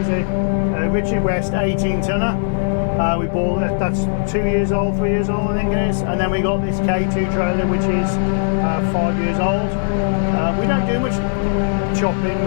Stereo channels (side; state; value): right; silent; digital silence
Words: a Richard West 18 tonner. We bought that's 2 years old, 3 years old I think it is. And then we got this K2 trailer which is 5 years old. We don't do much chopping